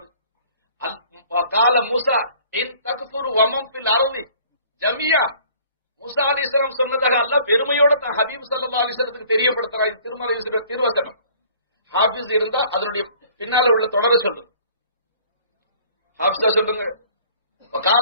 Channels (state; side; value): inverted; both; correlation -0.54